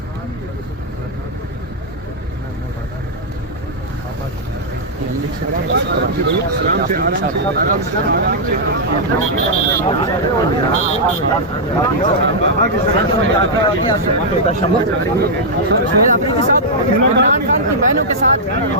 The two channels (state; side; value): normal; both; correlation -0.07